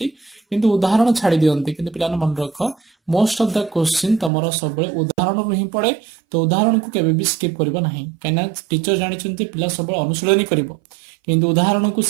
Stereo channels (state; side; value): drops out; left; at 4.3 s